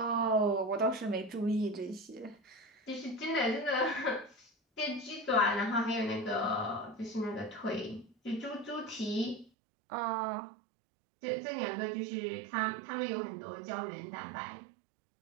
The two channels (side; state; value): left; drops out; at 9.5 s